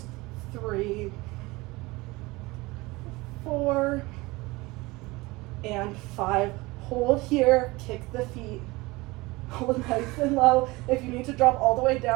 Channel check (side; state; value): left; quieter; 22.3 dB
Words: 3, 4, and 5. Hold here, kick the feet. Hold nice and low. If you need to drop all the way